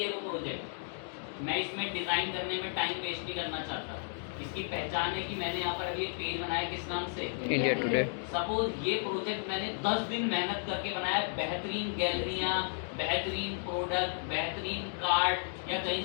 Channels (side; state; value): right; silent; digital silence